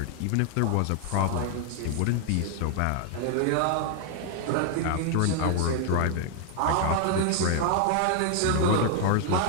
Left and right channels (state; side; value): different; both; correlation 0.00